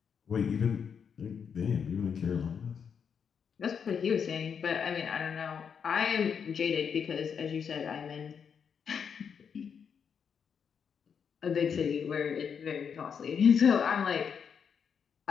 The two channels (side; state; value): right; quieter; 7.0 dB